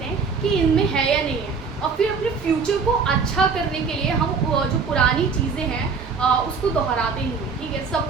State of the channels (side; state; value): left; quieter; 5.2 dB